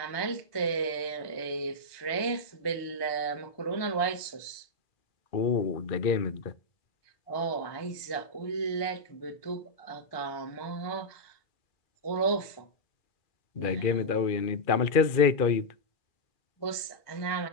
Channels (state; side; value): late; right; 1.2 ms